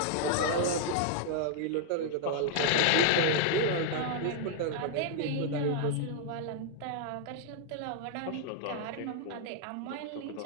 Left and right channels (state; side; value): different; both; correlation -0.01